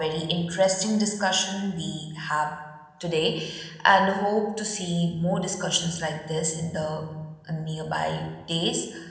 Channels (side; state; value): both; identical; correlation 1.00